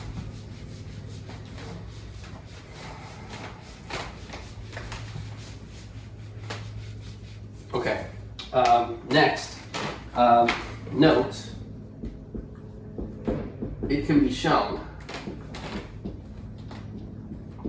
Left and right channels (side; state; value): both; identical; correlation 1.00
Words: Okay, next, note, it can be shown